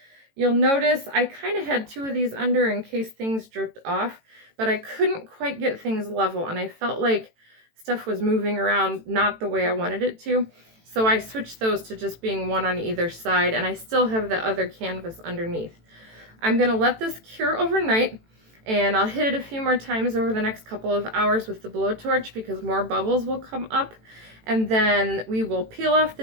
You'll notice I kind of had two of these under in case things dripped off, but I couldn't quite get things level, and I felt like stuff was moving around not the way I wanted it to. So I switched those to just being one on either side, and I still have the other canvas underneath. I'm gonna let this cure overnight, and I'll hit it a few more times over the next couple of hours with the blowtorch because more bubbles will come up. And then we will peel off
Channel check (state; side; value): late; left; 18 ms